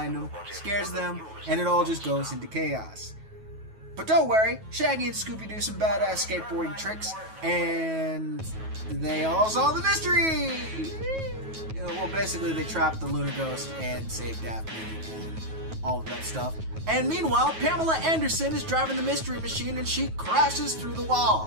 them, scares them, and it all just goes into chaos. But don't worry, Shaggy and Scooby do some badass skateboarding tricks, and they all solve the mystery! Well, basically they trap the Luna Ghost and save Daphne and all of that stuff. And meanwhile, Pamela Anderson is driving the Mystery Machine and she crashes through the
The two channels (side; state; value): left; late; 9.3 ms